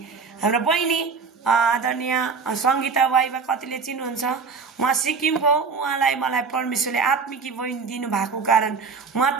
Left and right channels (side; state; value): left; quieter; 5.1 dB